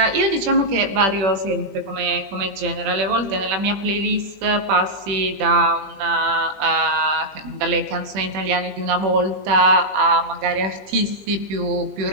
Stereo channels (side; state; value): left; late; 20 ms